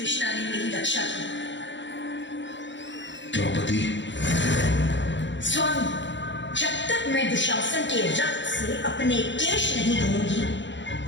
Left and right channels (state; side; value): late; right; 0.53 ms